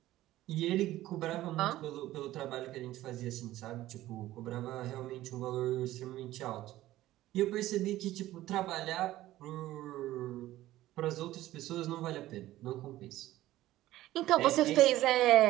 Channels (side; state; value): left; quieter; 15.3 dB